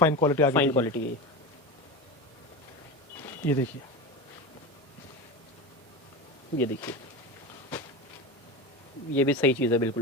क्वालिटी आ गई। फाइन क्वालिटी है। ये देखिए ये देखिए, ये भी सही चीज़ है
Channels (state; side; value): normal; both; correlation 0.23